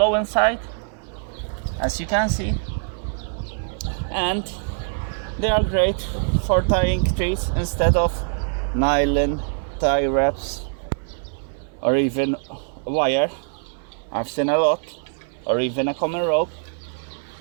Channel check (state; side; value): silent; left; 63 dB below the other